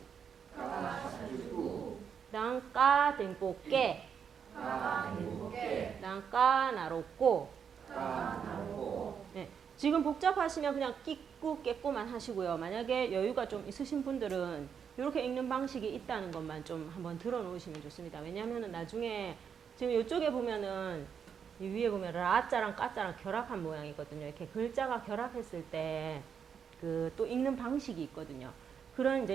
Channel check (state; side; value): quieter; left; 7.2 dB